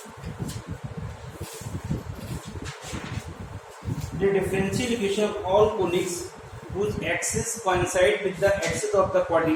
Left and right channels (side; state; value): both; identical; correlation 1.00